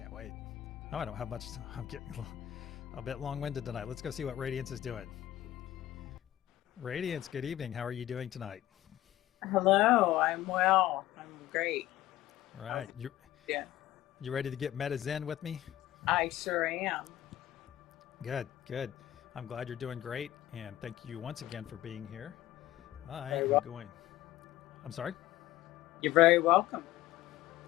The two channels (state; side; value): quieter; right; 14.1 dB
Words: wait. Oh, I don't have much. I'm getting a bit long-winded tonight. Let's go see what Radiance is doing. Radiance, good evening. How are you doing tonight? Hello, I'm well. I'm great. All right. Yeah. You ready to get meta zen with me? I sure am. Good, good. I'm glad you're doing great, and thank you once again for being here. I am going. I'm sorry? You're very welcome.